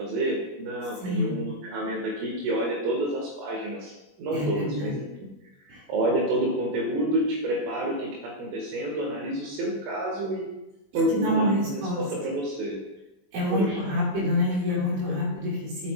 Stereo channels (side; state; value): left; late; 21 ms